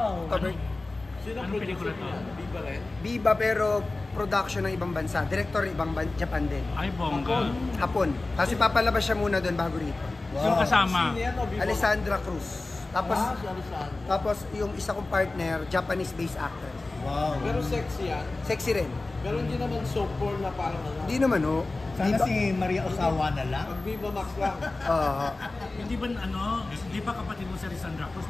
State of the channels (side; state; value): right; quieter; 3.2 dB